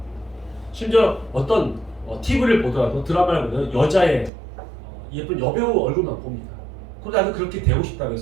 심지어 어떤 TV를 보더라도 드라마를 보면 여자의 예쁜 여배우 얼굴만 봅니다. 그러다 나도 그렇게 되고 싶다고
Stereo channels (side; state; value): left; drops out; at 4.3 s